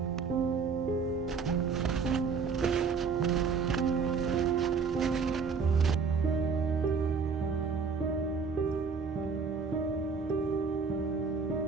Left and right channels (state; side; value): quieter; left; 5.3 dB